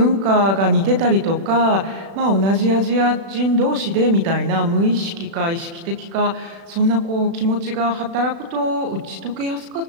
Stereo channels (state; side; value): late; left; 36 ms